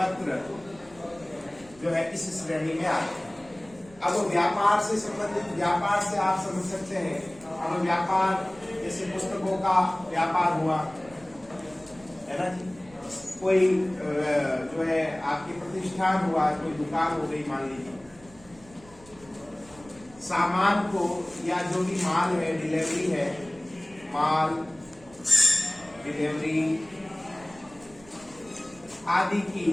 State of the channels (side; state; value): right; noise; rumble, 24 dB below the sound